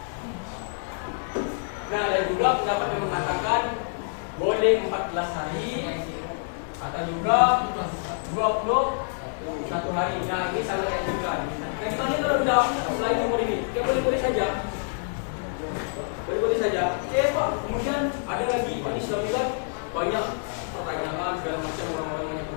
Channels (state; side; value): silent; right; digital silence